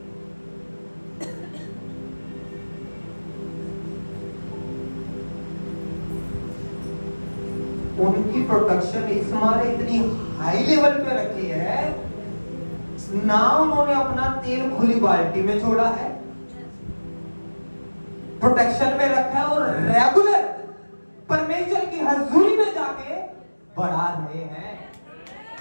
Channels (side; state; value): both; inverted; correlation -1.00